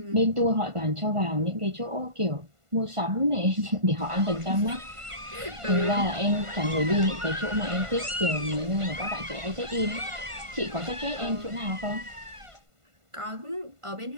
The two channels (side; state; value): left; late; 1.5 ms